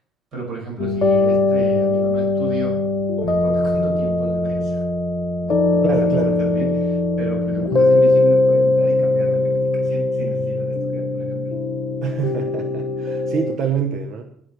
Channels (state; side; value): normal; both; correlation 0.70